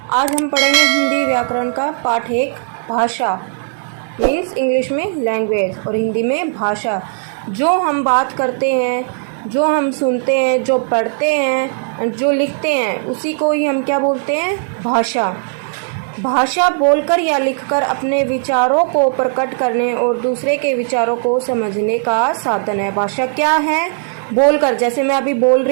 आज हम पढ़ेंगे हिंदी व्याकरण का पाठ 1 भाषा मीन्स इंग्लिश में लैंग्वेज और हिंदी में भाषा। जो हम बात करते हैं, जो हम सुनते हैं, जो पढ़ते हैं, जो लिखते हैं, उसी को ही हम क्या बोलते हैं? भाषा। भाषा बोलकर या लिखकर अपने विचारों को प्रकट करने और दूसरे के विचारों को समझने का साधन है। भाषा क्या है? बोलकर, जैसे मैं अभी बोल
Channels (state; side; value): silent; left; digital silence